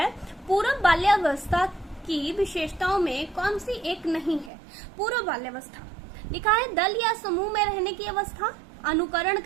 पूर्व बाल्यावस्था की विशेषताओं में कौन सी एक नहीं है? पूर्व बाल्यावस्था लिखा है दल या समूह में रहने की अवस्था, अनुकरण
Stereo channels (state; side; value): drops out; left; at 4.5 s